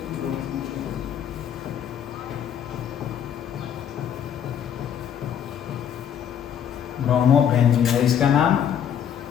ब्रोमोबेंजीन है इसका नाम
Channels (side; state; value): right; quieter; 8.8 dB